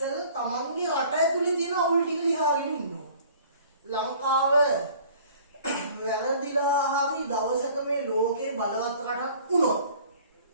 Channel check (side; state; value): both; inverted; correlation -0.50